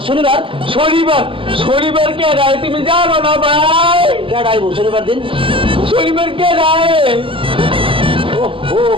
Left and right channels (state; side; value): late; left; 0.25 ms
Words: শনিবার শনিবার শনিবার কে রায় তুমি জানো না ভাই কেডা আইবো শনিবার দিন শনিবার কে রায় ও